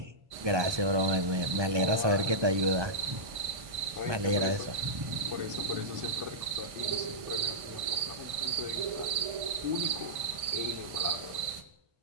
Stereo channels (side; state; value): left; late; 1.5 ms